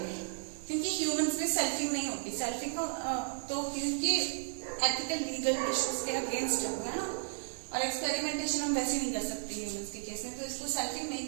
क्योंकि ह्यूमंस में सेल्फिंग नहीं होती। सेल्फिंग को तो क्योंकि एथिकल लीगल इश्यूज के अगेंस्ट है ना, और एक्सपेरिमेंटेशन हम वैसे नहीं कर सकते ह्यूमंस के केस में, तो इसको सेल्फिंग नहीं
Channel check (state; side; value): silent; left; digital silence